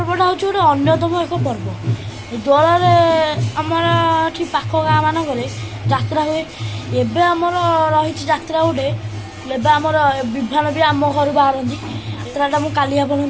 हूँ गोटे अन्यतम एक पर्व। दोल आमर ये पाख गाँ मानक जात्रा हुए। एबे आमर रही जात्रा गोटे एबे आमर विभान भी आम घर बाहर यात्राटा मुझे काली आपको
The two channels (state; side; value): identical; both; correlation 1.00